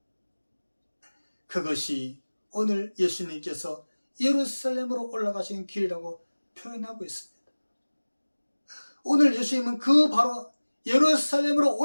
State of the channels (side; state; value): both; inverted; correlation -1.00